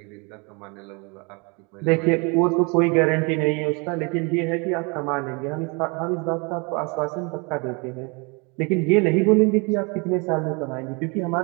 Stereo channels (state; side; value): quieter; left; 30.5 dB